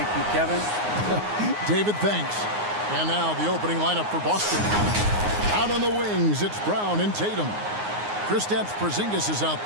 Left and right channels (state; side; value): late; left; 9.6 ms